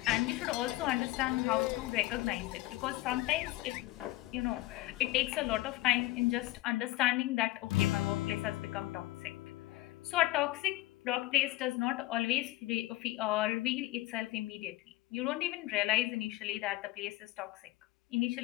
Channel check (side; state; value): right; quieter; 18.0 dB